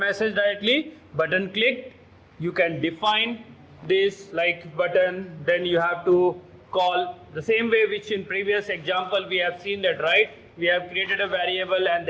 directly. Button clicked, you can define this like button, then you have to call the same way which in previous example we have seen that, right? We have created a variable and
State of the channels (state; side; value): identical; both; correlation 1.00